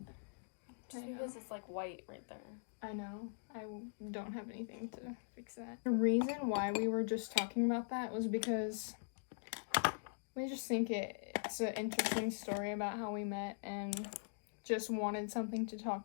This is, like, white right there. I know. I don't have anything to fix that. The reason why we were just talking about that was because... we just think it's an interesting story about how we met and just wanted something to talk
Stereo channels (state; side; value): silent; right; digital silence